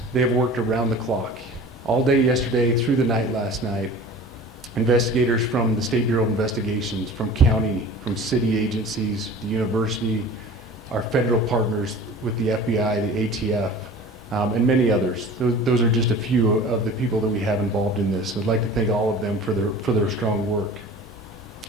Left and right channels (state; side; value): normal; both; correlation 0.40